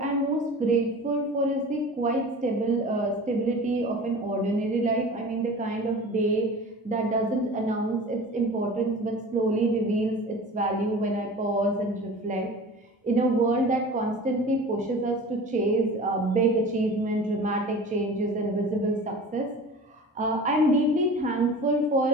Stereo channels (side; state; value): both; normal; correlation 0.38